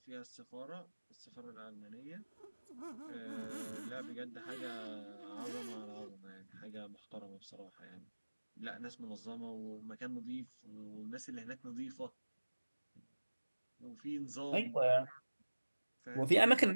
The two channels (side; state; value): both; inverted; correlation -1.00